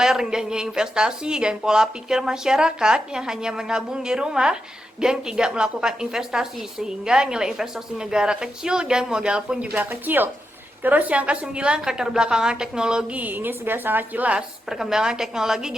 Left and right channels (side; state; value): both; normal; correlation 0.86